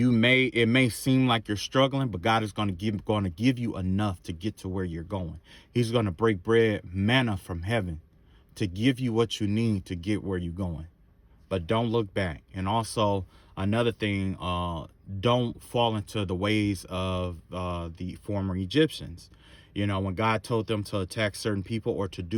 may seem like you're struggling, but God is going to give you enough to get to where you're going. He's going to break bread, manna from heaven, to give you what you need to get where you're going. But don't look back. And also another thing, don't fall into the ways of the former Egyptians. When God told them to attack certain people or to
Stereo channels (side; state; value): both; identical; correlation 1.00